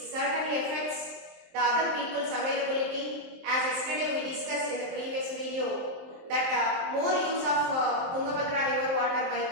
affects the other people's availability. As yesterday we discussed in the previous video that more use of Tungabhadra river water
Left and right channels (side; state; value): left; late; 23 ms